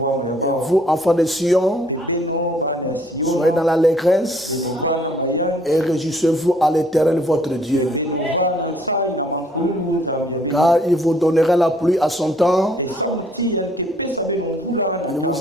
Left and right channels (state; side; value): normal; both; correlation 0.63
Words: vous, enfants de Sion, soyez dans l'allégresse et réjouissez-vous à l'Éternel votre Dieu. Car il vous donnera la pluie à son temps. Il